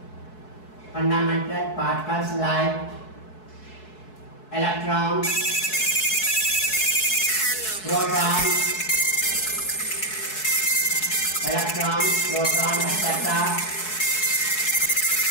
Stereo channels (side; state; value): right; late; 4.7 ms